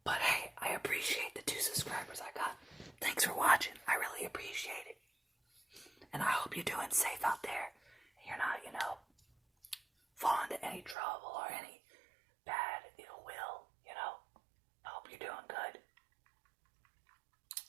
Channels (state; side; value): drops out; left; at 11.0 s